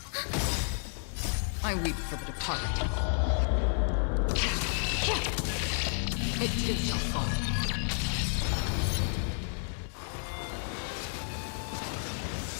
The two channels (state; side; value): silent; right; 55 dB below the other